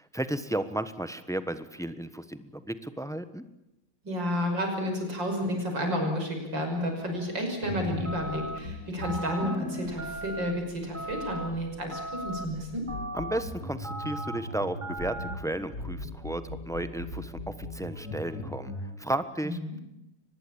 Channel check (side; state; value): both; normal; correlation 0.38